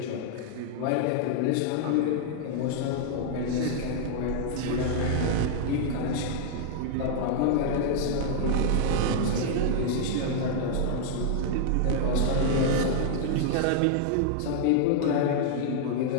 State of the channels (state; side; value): different; both; correlation -0.01